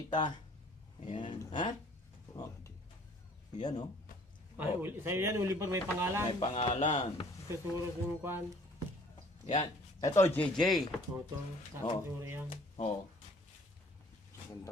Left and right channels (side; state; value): both; normal; correlation 0.55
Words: Ayan. Ha? Oh, Oh. daddy. Yan oh. Ay, sa'yo yan, Oliver, may pangalan. May pangalan. Tuturo yung kwan. Yan. Ito, JJ. Toto. Oh. Tuturo yan. Oh. Ganda.